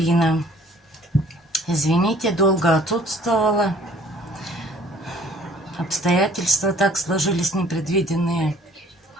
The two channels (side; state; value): both; normal; correlation 0.55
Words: Извините, долго отсутствовала. Обстоятельства так сложились непредвиденные.